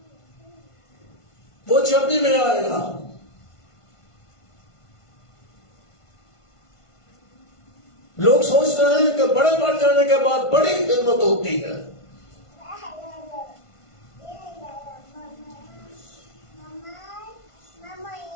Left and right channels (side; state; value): right; late; 1.5 ms